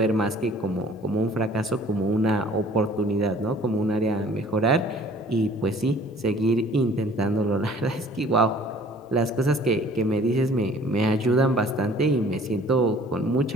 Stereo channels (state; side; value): normal; both; correlation 0.52